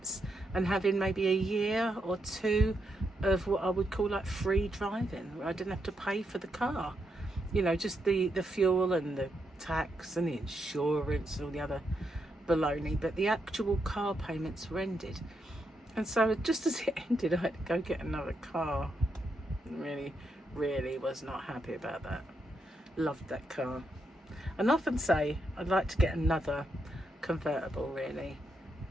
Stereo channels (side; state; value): both; normal; correlation 0.81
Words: and having maybe a year or two of what I would call like free driving, where I didn't have to pay for the car. You know, just the fuel and the tax and the insurance and all the other baloney. But the actual car payments were ended. And so just as it ended, I had to go get another car. Really, really was not happy about that. Loved that car. And often say I'd like to get another convertible, really.